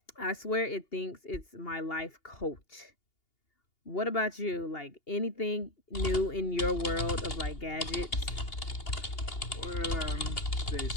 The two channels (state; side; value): late; right; 2.8 ms